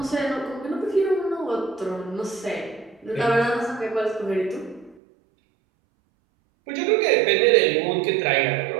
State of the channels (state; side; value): drops out; left; at 5.0 s